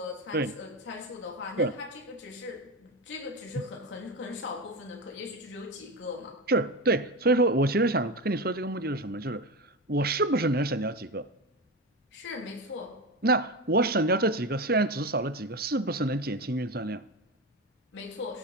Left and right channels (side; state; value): both; normal; correlation 0.20